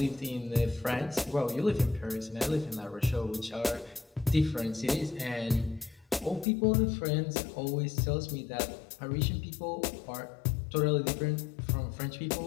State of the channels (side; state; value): right; drops out; at 6.5 s